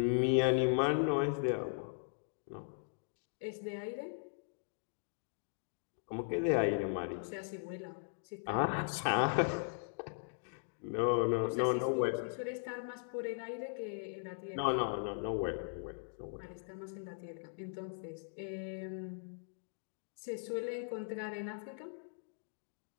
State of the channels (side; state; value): right; silent; digital silence